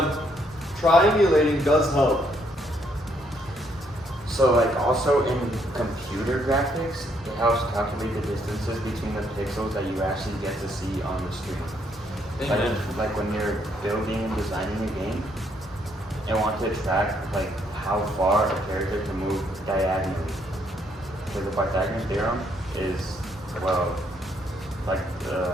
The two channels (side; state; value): both; normal; correlation 0.71